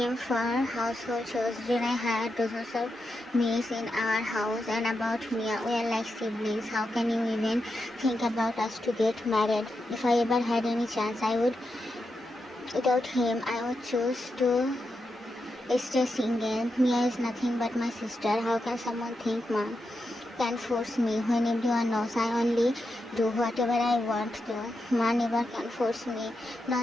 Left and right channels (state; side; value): normal; both; correlation 0.87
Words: for household chores. Then I had dozens of maids in our house, and about me, we are like siblings. How can you even think about us to get married? If I ever had any chance, without him, I would choose to stay single. Mia is nothing but my sister. How can someone think Mom can force me when everyone knows I only do whatever I want to? Ma never can force me.